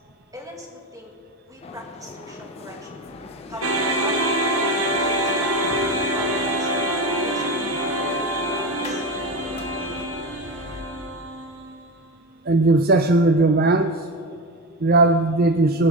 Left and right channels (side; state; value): both; normal; correlation 0.21